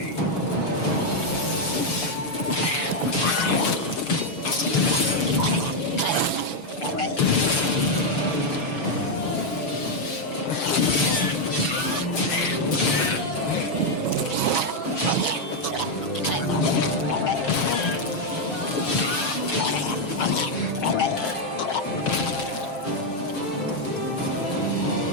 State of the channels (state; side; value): late; right; 6.8 ms